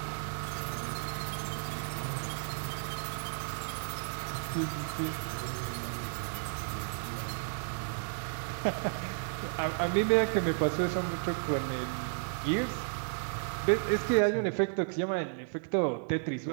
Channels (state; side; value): silent; left; 56 dB below the other